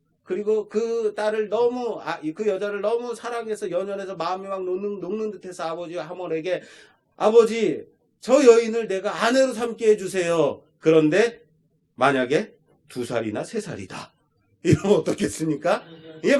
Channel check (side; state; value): both; identical; correlation 1.00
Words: 그리고 그 딸을 너무 그 여자를 너무 사랑해서 연연해서 마음이 막 녹는 듯해서 아버지 하몰에게 아버지 저 여인을 내가 아내로 삼게 해주세요. 그런데 만약에 2살이나 3살이다. 이러면 어떻겠습니까? 이게